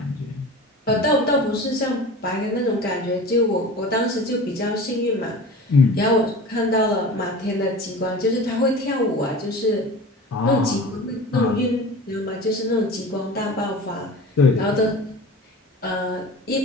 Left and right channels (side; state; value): both; normal; correlation 0.36